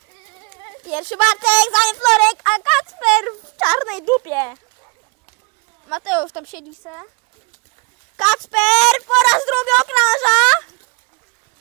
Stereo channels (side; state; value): left; quieter; 31.6 dB